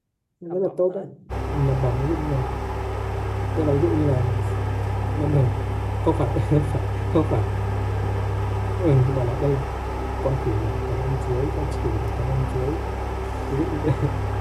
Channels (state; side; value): identical; both; correlation 1.00